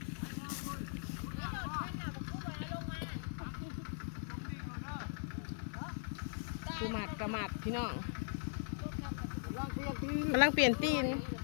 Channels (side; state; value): right; silent; 51 dB below the other